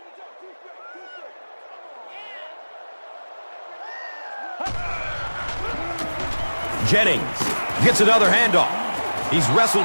Jennings gets another handoff. He's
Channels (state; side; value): inverted; both; correlation -1.00